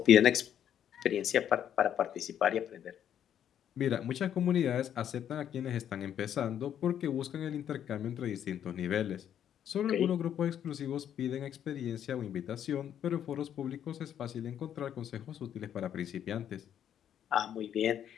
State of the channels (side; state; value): right; quieter; 9.8 dB